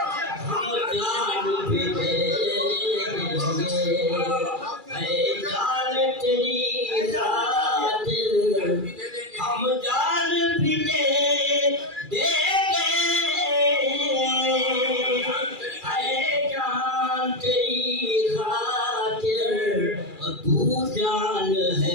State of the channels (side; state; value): left; late; 2.4 ms